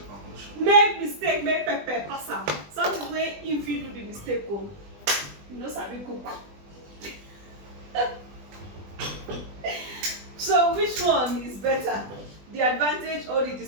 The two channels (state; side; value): late; left; 20 ms